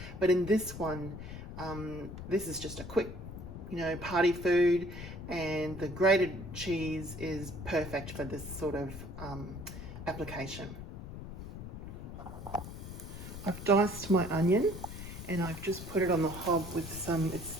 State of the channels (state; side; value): noise; left; rumble, 10 dB below the sound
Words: but in this one, this is just a quick, party food, and the grated cheese is perfect for this sort of application. I've diced my onion, and I've just put it on the hob with